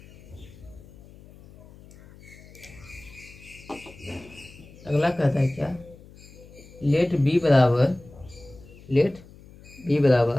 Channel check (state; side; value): noise; left; hum, 21 dB below the sound